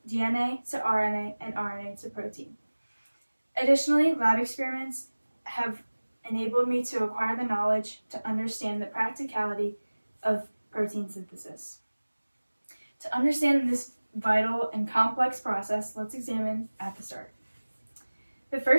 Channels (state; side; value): inverted; both; correlation -1.00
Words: DNA to RNA and RNA to protein. Additionally, lab experiments have enabled me to acquire the knowledge to understand the practicality of protein synthesis. To understand this vital and complex process, let's examine at the start. The